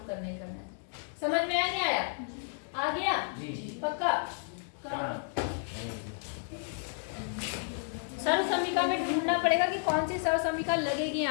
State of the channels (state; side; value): silent; right; 56 dB below the other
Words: करना ही करना है। समझ में आया नहीं आया? आ गया जी। पक्का? सरल समीका में ढूंढना पड़ेगा कि कौन सी सरल समीका लगेगी